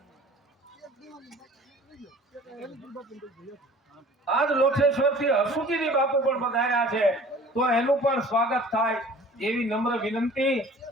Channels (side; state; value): both; normal; correlation 0.47